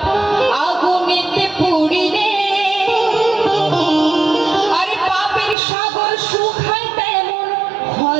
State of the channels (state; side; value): drops out; left; at 5.6 s